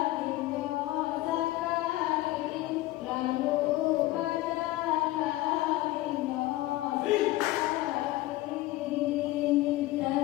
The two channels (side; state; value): right; quieter; 17.5 dB